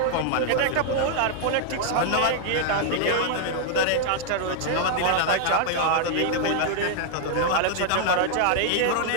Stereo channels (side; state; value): both; different; correlation -0.01